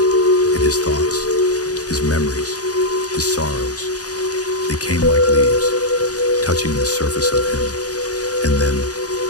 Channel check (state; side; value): late; right; 0.67 ms